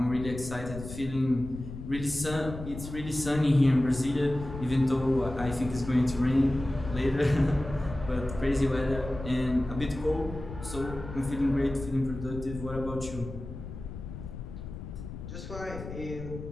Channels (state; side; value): noise; left; rumble, 10 dB below the sound